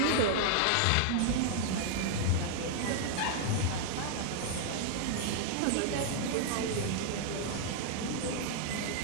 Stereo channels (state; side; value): different; both; correlation 0.00